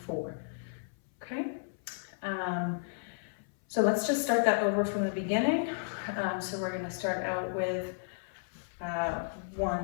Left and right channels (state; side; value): silent; right; 56 dB below the other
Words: 4. Okay. So let's just start that over from the beginning. So we're going to start out with 1